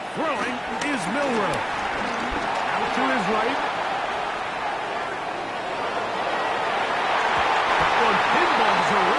Throwing is Milroe. Out to his right. That one pinballs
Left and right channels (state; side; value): identical; both; correlation 1.00